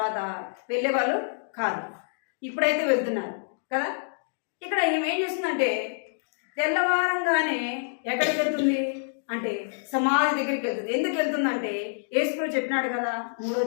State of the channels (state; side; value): silent; right; digital silence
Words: వెళ్ళేవాళ్ళు కాదు. ఇప్పుడైతే వెళ్తున్నారు కదా. ఇక్కడ ఏం చేస్తుందంటే తెల్లవారంగానే ఎక్కడికి వెళ్తుంది అంటే సమాధి దగ్గరికి వెళ్తుంది. ఎందుకు వెళ్తుందంటే యేసు చెప్పినాడు కదా 3వ